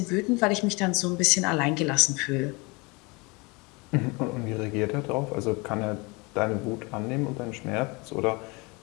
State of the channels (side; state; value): right; quieter; 27.3 dB